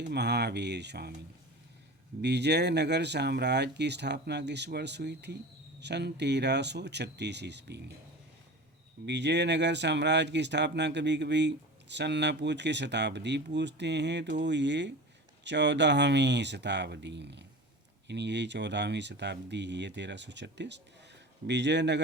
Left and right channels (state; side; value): normal; both; correlation 0.33